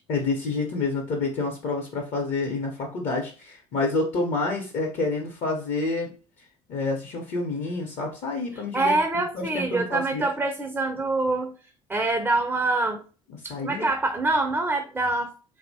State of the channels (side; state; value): both; normal; correlation 0.44